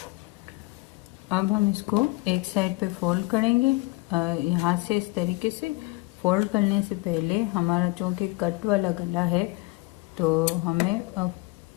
अब हम इसको एक साइड पे फोल्ड करेंगे। यहाँ से इस तरीके से फोल्ड करने से पहले हमारा चूँकि कट वाला गला है, तो हमें अब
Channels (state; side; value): quieter; right; 22.8 dB